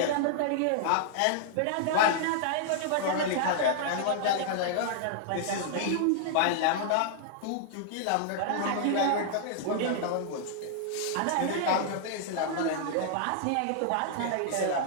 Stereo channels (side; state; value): both; different; correlation -0.01